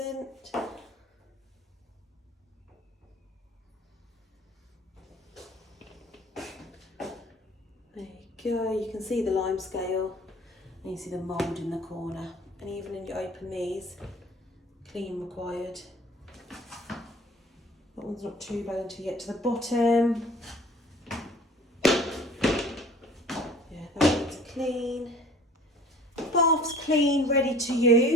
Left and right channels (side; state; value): both; normal; correlation 0.48